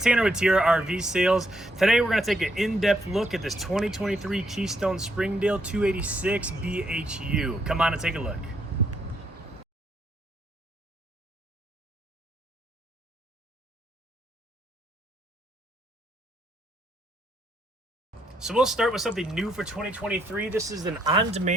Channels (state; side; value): normal; both; correlation 0.75